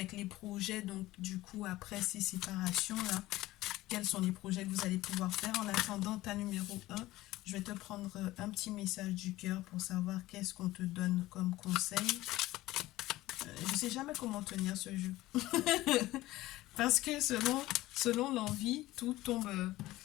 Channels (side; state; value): right; quieter; 17.2 dB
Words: les projets. Donc du coup, après ces séparations-là, quels sont les projets que vous allez pouvoir faire. En attendant ta numéro 1, je vais te prendre un petit message du cœur pour savoir qu'est-ce qu'on te donne comme conseil. Je ne sais jamais comment tenir ce jeu. Parce que selon l'envie, tout tombe